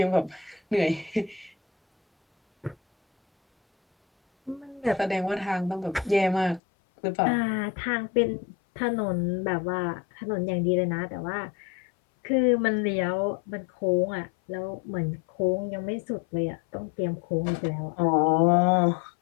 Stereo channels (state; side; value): drops out; right; at 6.6 s